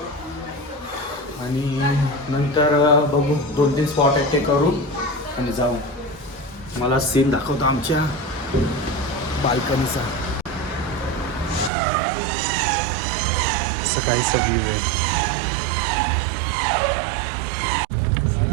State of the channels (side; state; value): left; drops out; at 11.7 s